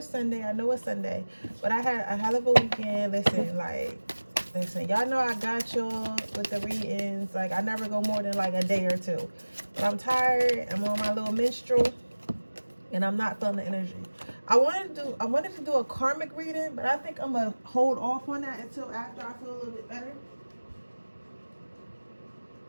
Sunday, but I had a hell of a weekend. Listen, y'all know I got y'all with the readings. Like, I never go more than like a day or two. But I'm tired. I'm on my little menstrual, and I'm not feeling the energy. I wanted to do a karmic reading, but I think I'm gonna hold off on that until after I feel a little bit better.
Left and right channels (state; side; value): inverted; both; correlation -1.00